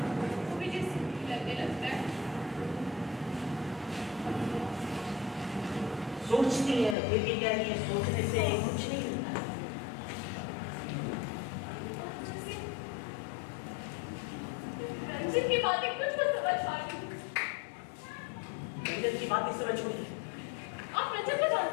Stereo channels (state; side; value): drops out; right; at 7.0 s